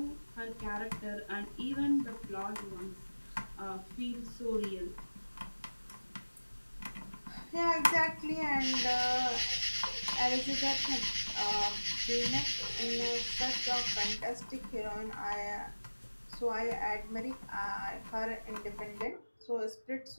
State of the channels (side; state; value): both; inverted; correlation -1.00